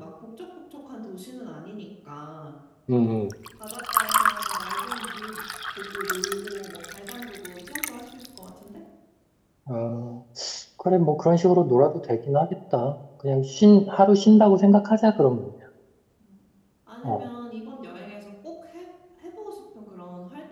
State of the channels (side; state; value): both; identical; correlation 1.00